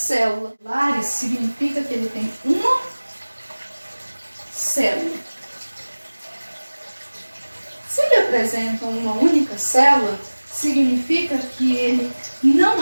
Lares significa que ele tem uma célula. Se ele apresenta uma única célula, significa que ele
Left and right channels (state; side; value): inverted; both; correlation -1.00